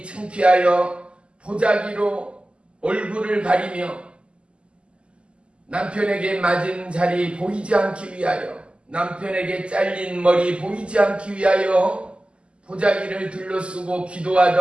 창피하여 보자기로 얼굴을 가리며 남편에게 맞은 자리 보이지 않기 위하여 남편에게 잘린 머리 보이지 않기 위하여 보자기를 둘러쓰고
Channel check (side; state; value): left; late; 0.053 ms